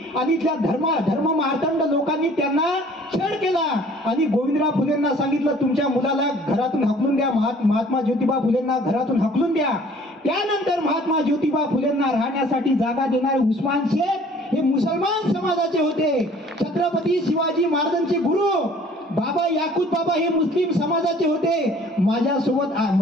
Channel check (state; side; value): normal; both; correlation 0.53